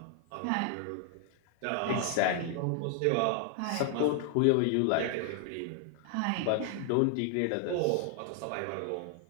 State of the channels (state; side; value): different; both; correlation 0.00